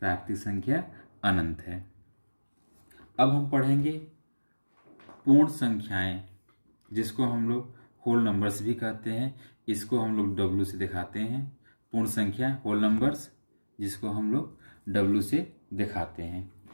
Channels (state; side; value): inverted; both; correlation -1.00